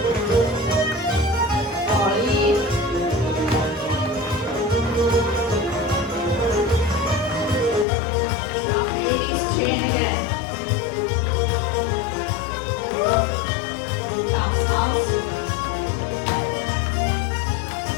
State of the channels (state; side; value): drops out; right; at 7.9 s